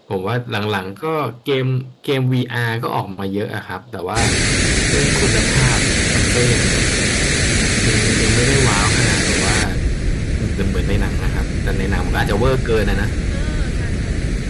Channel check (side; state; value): both; identical; correlation 1.00